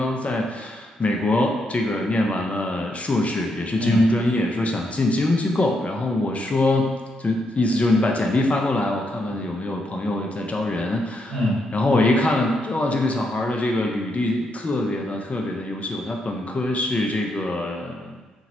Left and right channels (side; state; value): both; normal; correlation 0.79